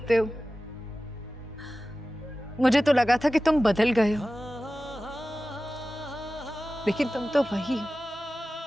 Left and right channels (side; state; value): both; normal; correlation 0.96